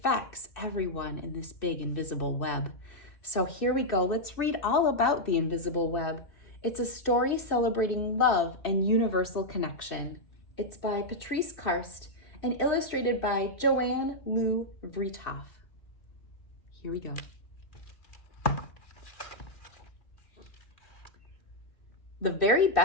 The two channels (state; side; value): late; right; 2.7 ms